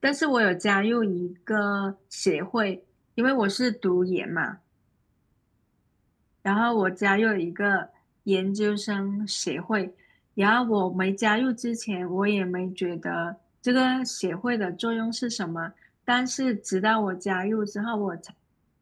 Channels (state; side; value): identical; both; correlation 1.00